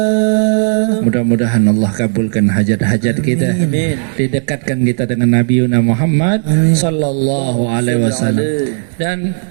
Mudah-mudahan Allah kabulkan hajat-hajat kita, didekatkan kita dengan Nabi Muhammad sallallahu alaihi wasallam. Dan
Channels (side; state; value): left; silent; digital silence